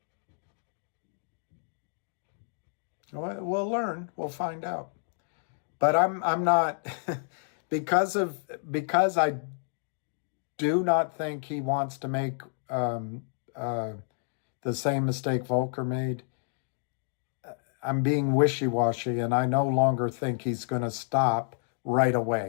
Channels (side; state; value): right; silent; digital silence